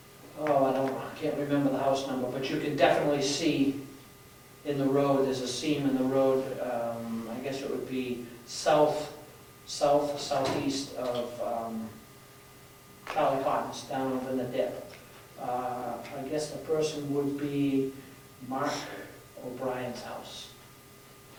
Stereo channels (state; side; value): identical; both; correlation 1.00